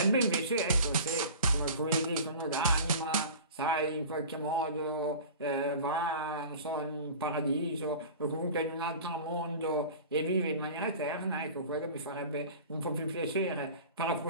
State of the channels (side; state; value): both; inverted; correlation -0.38